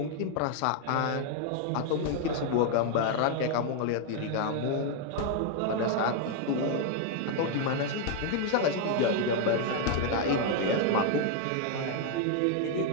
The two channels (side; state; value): both; different; correlation 0.00